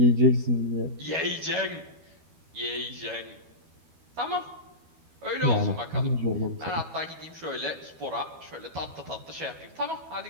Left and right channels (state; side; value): late; left; 12 ms